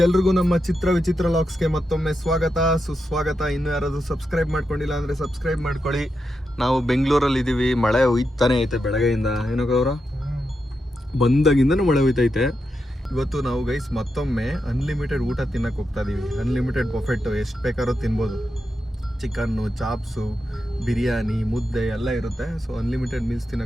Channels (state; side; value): normal; both; correlation 0.86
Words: ಎಲ್ರಿಗೂ ನಮ್ಮ ಚಿತ್ರ ವಿಚಿತ್ರ ಲಾಕ್ಸ್ಗೆ ಮತ್ತೊಮ್ಮೆ ಸ್ವಾಗತ ಸುಸ್ವಾಗತ. ಇನ್ನು ಯಾರಾದ್ರೂ ಸಬ್ಸ್ಕ್ರೈಬ್ ಮಾಡ್ಕೊಂಡಿಲ್ಲ ಅಂದ್ರೆ ಸಬ್ಸ್ಕ್ರೈಬ್ ಮಾಡ್ಕೊಳ್ಳಿ. ನಾವು ಬೆಂಗಳೂರಲ್ಲಿ ಇದೀವಿ. ಮಳೆ ಹೋಯ್ತಾನೆ ಐತೆ ಬೆಳಗ್ಗೆಯಿಂದ. ಏನೋ ಅವರ ಬಂದಾಗಿಂದನೂ ಮಳೆ ಹೋಯ್ತೈತೆ. ಇವತ್ತು ನಾವು ಗೈಸ್ ಮತ್ತೊಮ್ಮೆ ಅನ್ಲಿಮಿಟೆಡ್ ಊಟ ತಿನ್ನಕ್ಕೆ ಹೋಗ್ತಾ ಇದೀವಿ. ಅನ್ಲಿಮಿಟೆಡ್ ಬಫೆಟ್, ಎಷ್ಟು ಬೇಕಾದ್ರೂ ತಿನ್ಬೋದು. ಚಿಕನ್ನು, ಚಾಪ್ಸು, ಬಿರಿಯಾನಿ, ಮುದ್ದೆ ಎಲ್ಲ ಇರುತ್ತೆ. ಸೊ ಅನ್ಲಿಮಿಟೆಡ್ ಮೀಲ್ಸ್